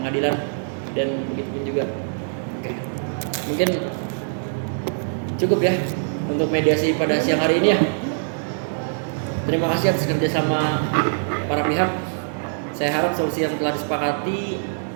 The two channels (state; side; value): silent; left; digital silence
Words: dan begitu pun juga. Oke, mungkin cukup ya untuk mediasi pada siang hari ini ya. Terima kasih atas kerjasama para pihak. Saya harap solusi yang telah disepakati